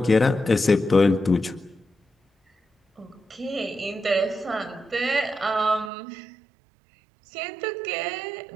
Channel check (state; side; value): drops out; left; at 5.9 s